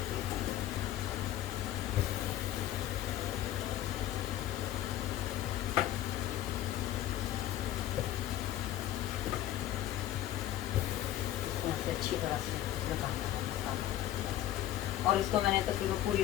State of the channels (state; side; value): quieter; right; 13.2 dB